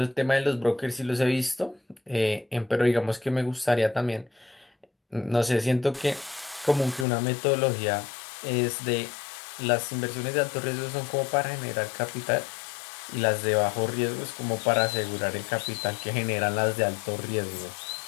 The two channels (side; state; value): right; drops out; at 7.1 s